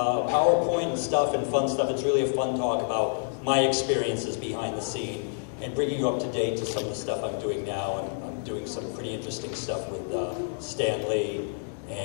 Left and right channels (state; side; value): silent; right; digital silence